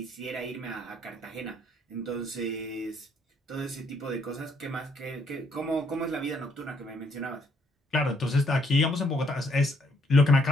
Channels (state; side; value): normal; both; correlation 0.69